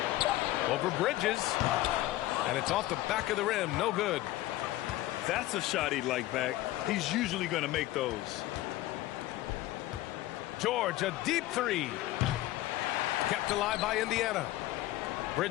Over Bridges. And it's off the back of the rim. No good. That's a shot he'd like back. He's usually going to make those. George, a deep three. Kept alive by Indiana.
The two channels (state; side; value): quieter; right; 16.3 dB